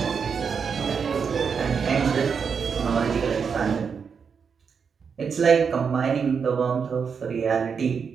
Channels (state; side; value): quieter; left; 6.2 dB